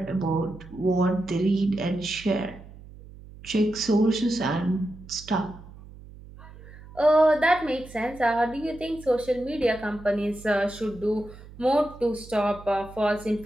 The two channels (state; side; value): noise; right; hum, 18 dB below the sound